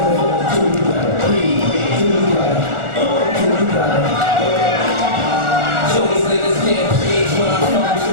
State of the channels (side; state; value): left; late; 1.4 ms